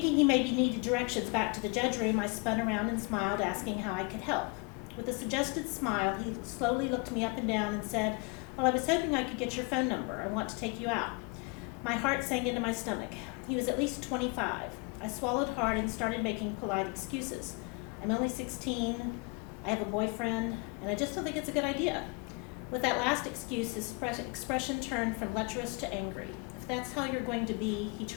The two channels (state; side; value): quieter; right; 30.8 dB